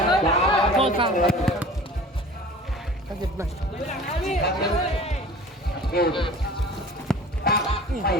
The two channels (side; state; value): both; normal; correlation 0.43